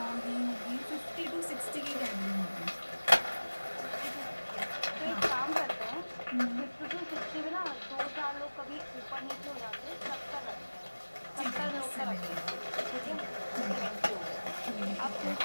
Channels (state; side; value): inverted; both; correlation -1.00